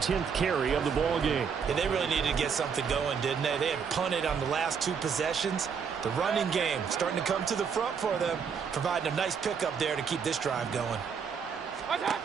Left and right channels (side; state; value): left; quieter; 6.5 dB